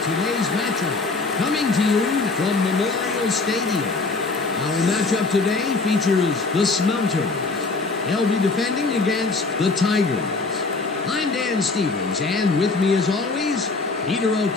today's matchup, coming to you from Memorial Stadium. Our matchup today features the Smelters. They'll be defending against the Tigers. I'm Dan Stevens, and with me as always, Peter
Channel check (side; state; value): right; quieter; 3.8 dB